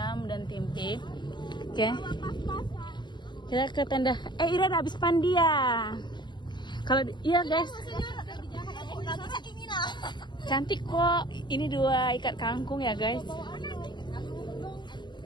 dan tempe. Oke. Kita ke tenda. Ira udah habis pandia. Kalau iya guys. Cantik kok. Ini 2 ikat kangkung ya guys.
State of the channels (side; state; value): right; late; 0.22 ms